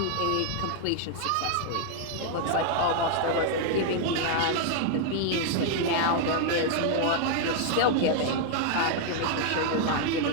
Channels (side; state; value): both; different; correlation 0.00